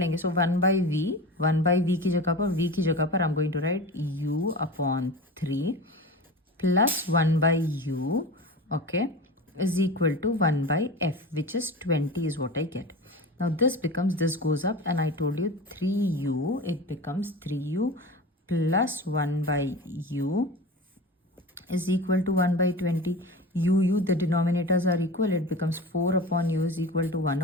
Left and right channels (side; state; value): both; normal; correlation 0.31